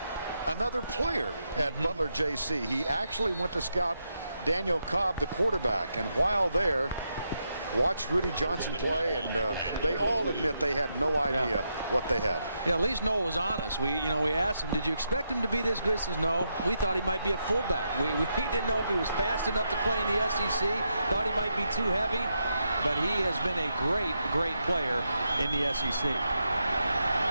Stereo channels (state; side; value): inverted; both; correlation -0.82